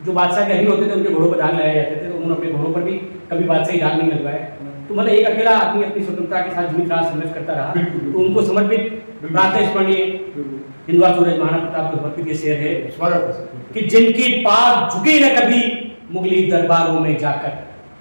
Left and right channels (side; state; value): both; inverted; correlation -1.00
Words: जो बादशाह के अधीन होते थे उनके घोड़ों पर दाग लगाए जाते थे, तो उन्होंने अपने घोड़ों पर भी कभी बादशाही दाग नहीं लगवाए। तो मतलब एक अकेला आदमी अपनी स्वतंत्रता के साथ जीवित रहा, संघर्ष करता रहा, तो उनको समर्पित प्रातः स्मरणीय हिंदुआ सूरज महाराणा प्रताप को समर्पित ये शेर है कि जिनकी पाग झुकी न कभी मुगली दरबारों में जाकर,